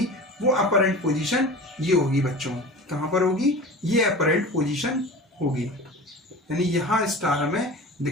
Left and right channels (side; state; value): both; normal; correlation 0.35